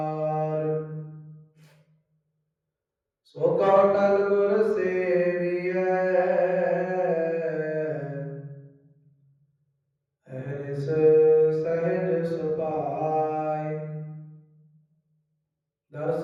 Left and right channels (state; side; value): identical; both; correlation 1.00